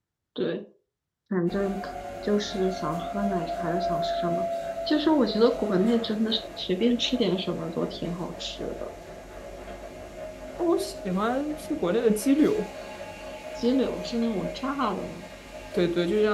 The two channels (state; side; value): identical; both; correlation 1.00